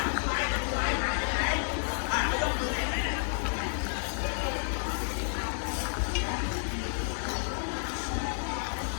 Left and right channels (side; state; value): right; silent; digital silence